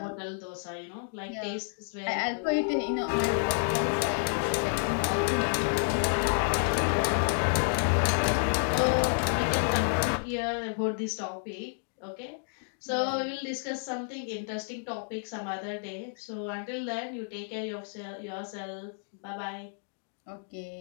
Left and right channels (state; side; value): silent; right; digital silence